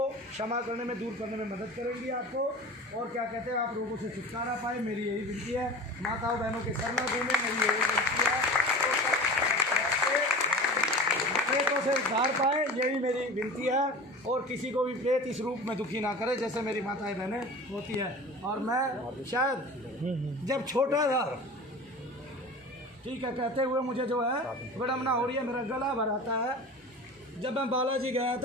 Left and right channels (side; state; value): both; normal; correlation 0.36